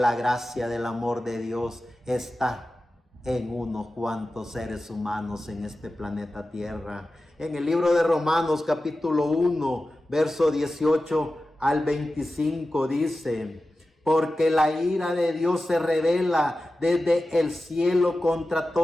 gracia del amor de Dios está en unos cuantos seres humanos en este planeta Tierra. En el libro de Romanos capítulo 1, verso 18 al 25 dice: porque la ira de Dios se revela desde el cielo contra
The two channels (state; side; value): normal; both; correlation 0.94